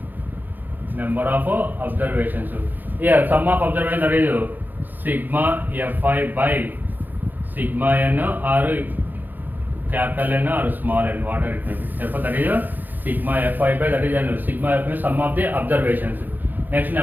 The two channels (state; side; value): late; left; 0.087 ms